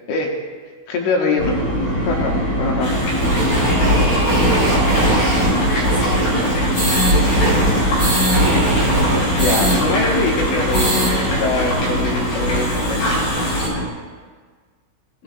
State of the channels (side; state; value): right; late; 16 ms